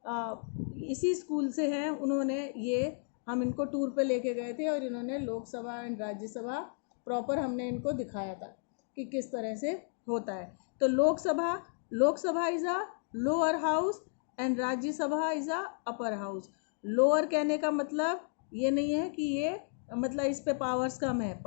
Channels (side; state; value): right; silent; digital silence